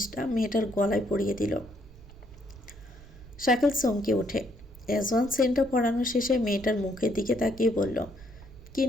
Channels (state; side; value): noise; right; rumble, 19 dB below the sound